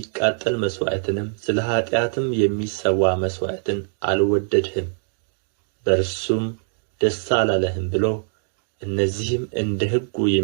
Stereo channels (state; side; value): silent; left; digital silence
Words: መሥዋዕትንም ስለ ኃጢአትም የሚሰዋ መሥዋዕትን አልወደድህም፣ በእርሱም ደስ አላለህም ብሎ እነዚህም እንደ ሕጉ